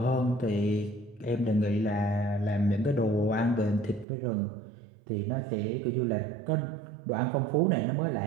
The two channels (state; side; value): drops out; left; at 4.0 s